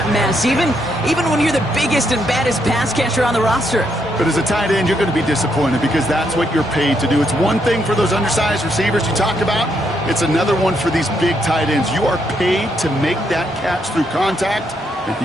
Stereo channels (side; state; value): both; normal; correlation 0.76